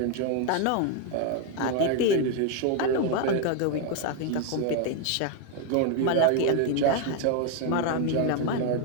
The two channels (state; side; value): different; both; correlation 0.01